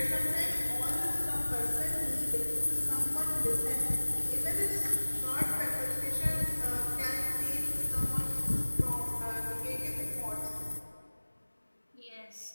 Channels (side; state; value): both; inverted; correlation -1.00